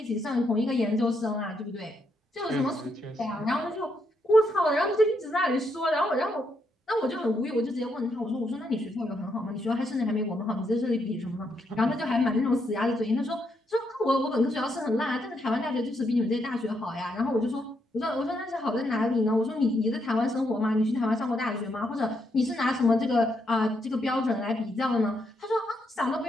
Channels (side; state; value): both; normal; correlation 0.78